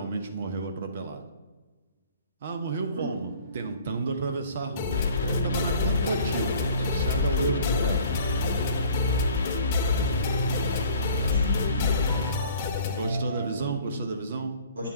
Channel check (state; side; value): inverted; both; correlation -0.51